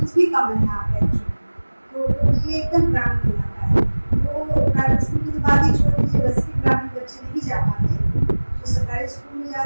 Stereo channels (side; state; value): both; inverted; correlation -1.00